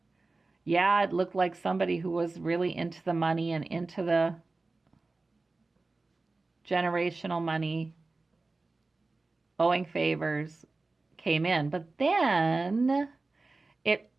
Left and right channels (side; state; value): left; quieter; 3.4 dB